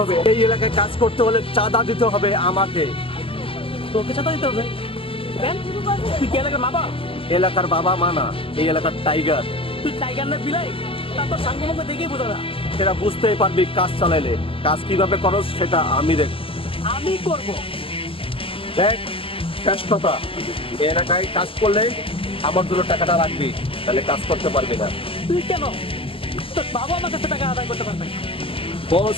হবে। এই এলাকায় কাজ করতে হলে চাঁদা দিতে হবে আমাকে। তোকে চাঁদা দিতে হবে কেন? তুই কি এলাকার বাবা? এলাকার বাবা মা না, এই এলাকার টাইগার। তুই টাইগার না বিলাই? তা তোর সাঙ্গে মুখে দেখেই বোঝা না। সেটা বুঝতেই পারবি কাজ চালাইলে। কাজ কিভাবে করস সেটা আমি দেখ। আমি করবো। দেখ শেষ কথা, এই এলাকায় কাজ করলে আমার জন্য টাকাটা রাখবি, তাহলে কাজ করতে পারবি না। তুই কেন? তোর বাবা আমার কাছে টাকা আদায় করতে পারবে।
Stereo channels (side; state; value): right; late; 0.26 ms